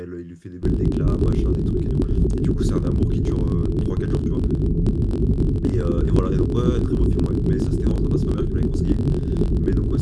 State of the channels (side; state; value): both; identical; correlation 1.00